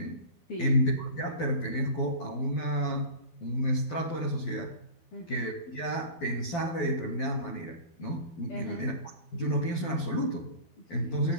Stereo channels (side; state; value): right; late; 12 ms